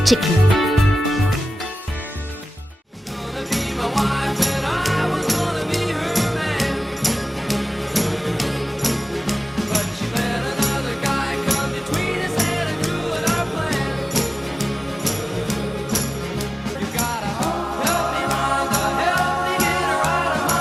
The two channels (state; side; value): normal; both; correlation 0.96